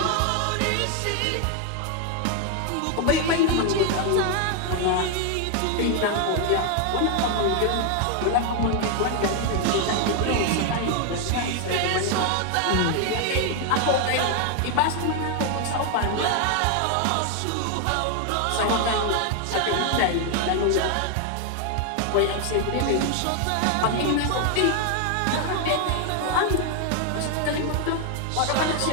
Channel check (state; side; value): different; both; correlation 0.00